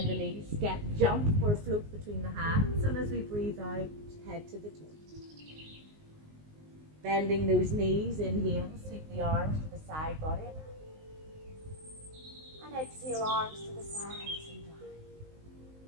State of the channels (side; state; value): left; late; 19 ms